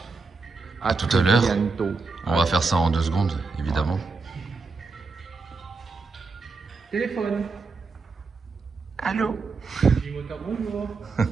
tout à l'heure. On va faire ça en 2 secondes, évidemment. Téléphone. Allô? Bonjour.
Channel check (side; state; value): left; quieter; 4.2 dB